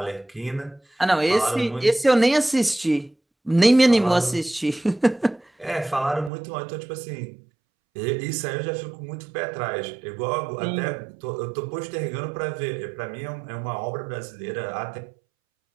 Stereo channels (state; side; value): drops out; left; at 6.3 s